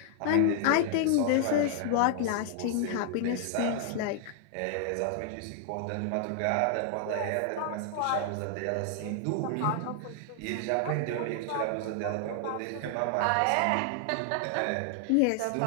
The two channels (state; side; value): different; both; correlation 0.00